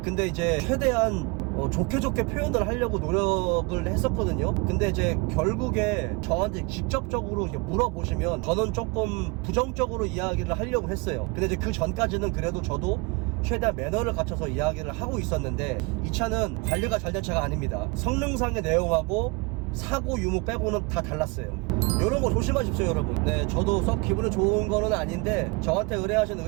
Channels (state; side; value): quieter; left; 27.7 dB